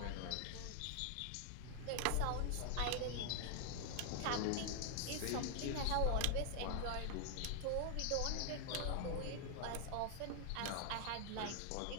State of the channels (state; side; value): different; both; correlation 0.00